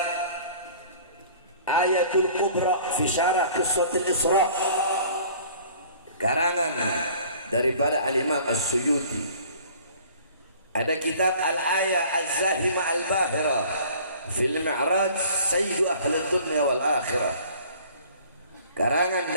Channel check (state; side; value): inverted; both; correlation -0.50